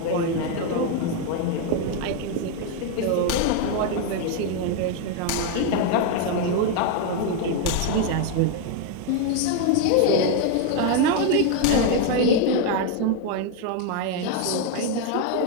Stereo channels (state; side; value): different; both; correlation 0.01